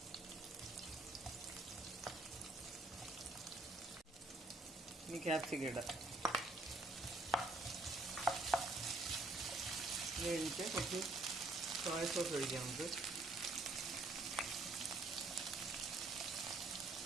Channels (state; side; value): quieter; left; 3.1 dB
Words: ഇനി ക്യാപ്സിക്കം ഇടാം. ഇത് കഴിഞ്ഞിട്ട് കുറച്ച് സോയ സോസ് ഒഴിക്കാം നമുക്ക്.